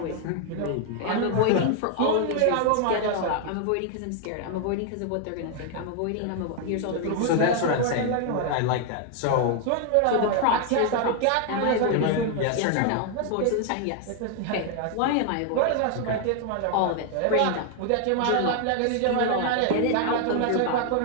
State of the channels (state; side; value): different; both; correlation 0.00